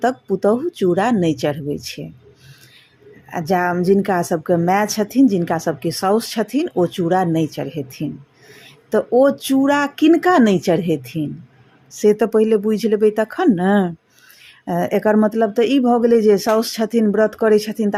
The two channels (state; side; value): identical; both; correlation 1.00